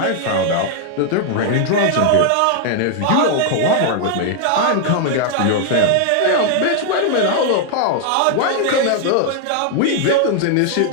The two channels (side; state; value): both; different; correlation 0.00